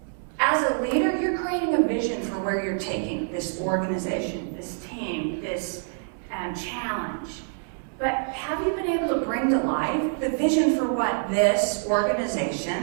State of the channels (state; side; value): silent; left; 61 dB below the other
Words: as a leader, you're creating a vision for where you're taking this organization, this team, this challenge. But have you been able to bring to life the vision for what this